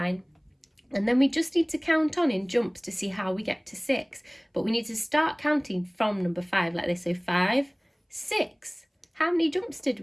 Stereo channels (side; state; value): both; identical; correlation 1.00